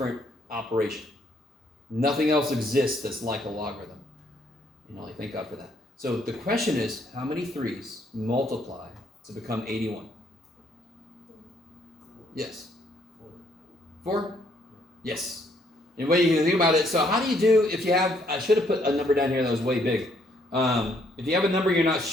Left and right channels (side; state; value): both; normal; correlation 0.68